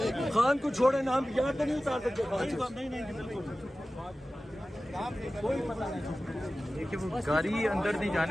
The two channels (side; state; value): both; normal; correlation 0.96